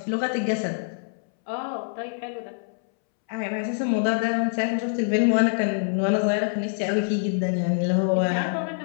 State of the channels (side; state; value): right; silent; 62 dB below the other